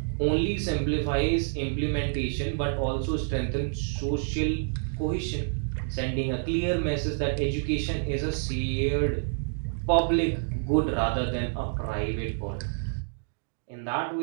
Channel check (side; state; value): left; silent; digital silence